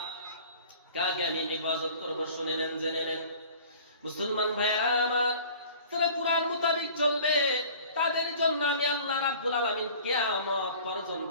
কাকে আমি হিফাজত করব? শুনে নেন, জেনে নেন। মুসলমান ভাইরা আমার, তারা কুরআন মোতাবেক চলবে, তাদের জন্য আমি আল্লাহ রাব্বুল আলামিন কিয়ামত পর্যন্ত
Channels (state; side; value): inverted; both; correlation -0.46